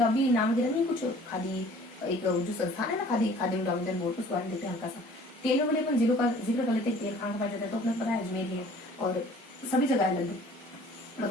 भी नाम वगैरह नहीं, कुछ खादी एक जो संस्थान है ना, खादी डेवलपमेंट बोर्ड, उसके बारे में देखते हैं हल्का सा। तेल वाले अपन जिलों का जिक्र कर लेते हैं। तेल कहाँ पाया जाता है? तो अपने पता है अजमेर है, और सभी जगह लगभग,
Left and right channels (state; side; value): normal; both; correlation 0.51